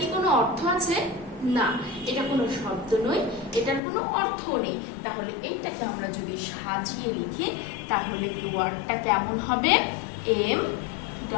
কোনো অর্থ আছে? না, এটা কোনো শব্দ নয়, এটার কোনো অর্থ নেই। তাহলে এইটাকে আমরা যদি সাজিয়ে লিখি তাহলে কি ওয়ার্ডটা কেমন হবে? M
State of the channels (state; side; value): drops out; right; at 3.8 s